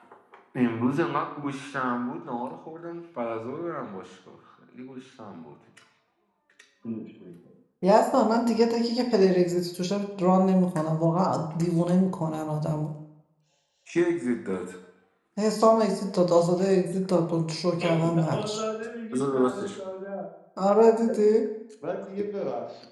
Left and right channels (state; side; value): identical; both; correlation 1.00